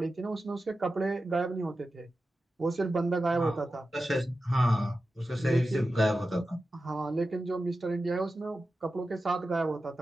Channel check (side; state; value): both; normal; correlation 0.92